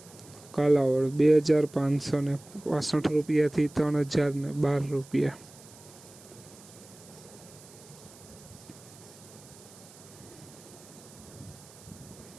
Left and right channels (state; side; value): noise; right; hiss, 21 dB below the sound